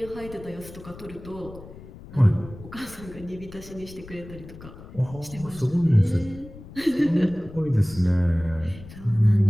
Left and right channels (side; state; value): left; noise; rumble, 16 dB below the sound